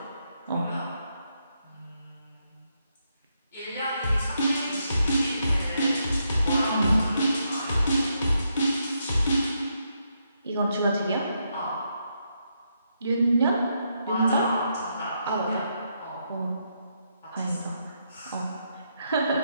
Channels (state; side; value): inverted; both; correlation -0.80